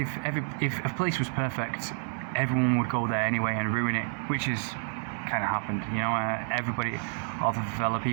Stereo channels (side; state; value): left; silent; 58 dB below the other